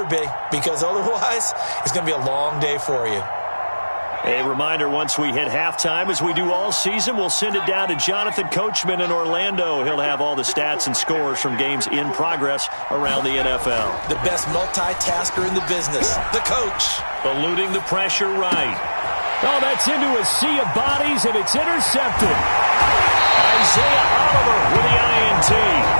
be, because otherwise it's going to be a long day for you. A reminder, once we hit halftime, as we do all season, we'll send it down to Jonathan Coachman in Orlando. He'll have all the stats and scores from games in progress around the NFL. The best multitasker in the business, the coach. Eluding the pressure right. Oh, that's into a sea of bodies, and it's intercepted. Isaiah Oliver with the INT.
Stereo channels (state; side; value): inverted; both; correlation -1.00